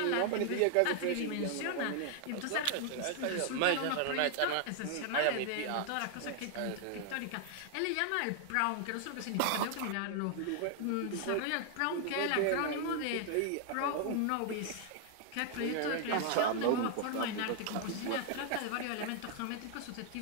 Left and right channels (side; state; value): both; different; correlation 0.00